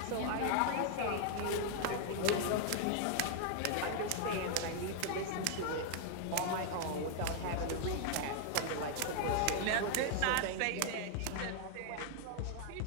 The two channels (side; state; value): both; different; correlation 0.00